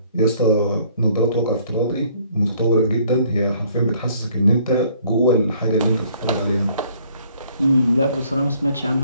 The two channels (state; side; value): inverted; both; correlation -0.61